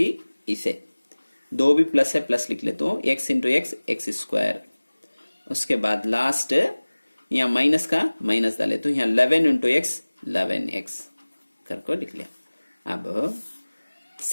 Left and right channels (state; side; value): inverted; both; correlation -1.00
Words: दो भी प्लस है, प्लस लिख ले तो एक्स इंटू एक्स स्क्वायर। उसके बाद लास्ट यहाँ माइनस का माइनस डाले तो यहाँ 11 इंटू एक्स 11x करके लिख लिया। अब